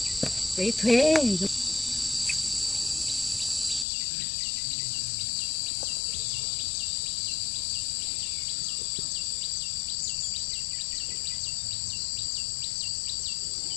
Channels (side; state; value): right; drops out; at 3.9 s